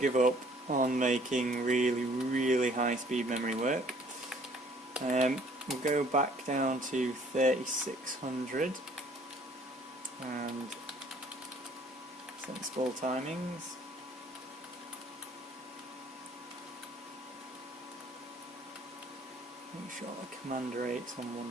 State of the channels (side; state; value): both; normal; correlation 0.58